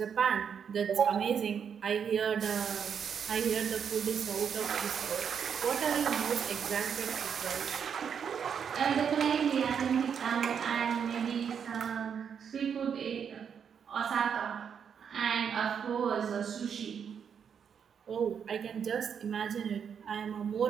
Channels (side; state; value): left; quieter; 7.4 dB